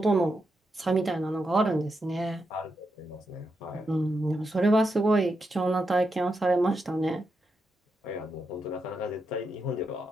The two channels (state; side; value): normal; both; correlation 0.84